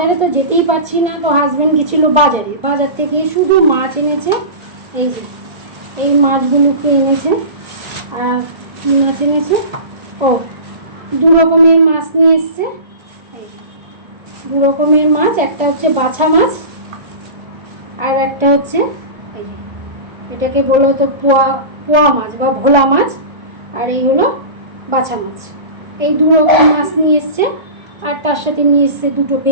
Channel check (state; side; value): late; left; 1.3 ms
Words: তো যেতেই পারছি না, তো হাজব্যান্ড গেছিল বাজারে, বাজার থেকে শুধু মাছ এনেছে। এই যে এই মাছগুলোকে এনেছে। আর কী মাছ এনেছে? ও, দু রকমের মাছ নিয়ে এসছে। দু রকমের মাছ, একটা হচ্ছে বাছা মাছ আর একটা হচ্ছে এই যে এটাকে বলা হতো পোয়া পোয়া মাছ বা ভোলা মাছ, আর এই হলো বাছা মাছ। এই দু রকম মাছ নিয়ে এসছে, আর তার সাথে নিয়ে এসছে দুটো